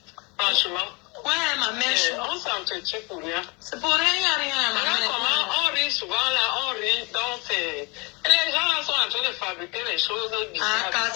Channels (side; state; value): right; quieter; 29.2 dB